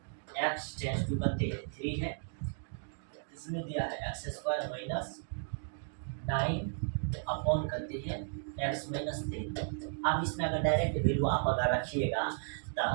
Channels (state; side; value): silent; left; digital silence